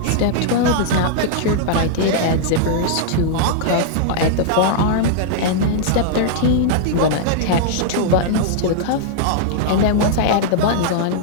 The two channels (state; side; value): different; both; correlation -0.01